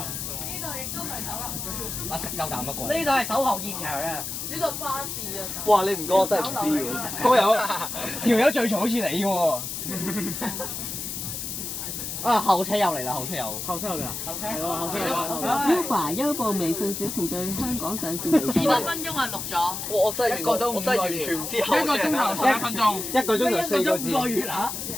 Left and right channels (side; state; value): left; noise; hiss, 5 dB below the sound